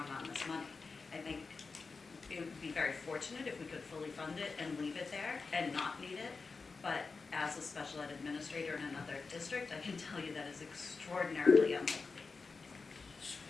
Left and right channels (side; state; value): right; quieter; 4.4 dB